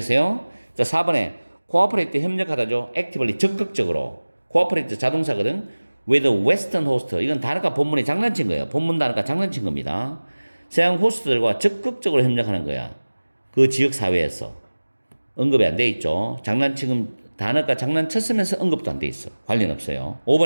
자, 4번에 cooperate, 협력하다죠. actively, 적극적으로. cooperate 자동사거든. with western host, 이건 단어가 본문에 장난친 거예요. 본문 단어가 장난친 겁니다. 서양 호스트들과 적극적으로 협력하는 거야. 그 지역 사회에서. 언급이 안 돼 있죠. 장난치금 단어가 장난쳤으면서 언급도 안 돼 있어. 관련 없어요.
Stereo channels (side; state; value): both; inverted; correlation -1.00